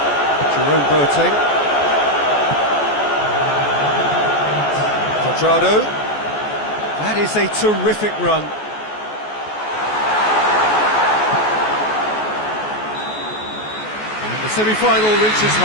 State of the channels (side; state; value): right; late; 14 ms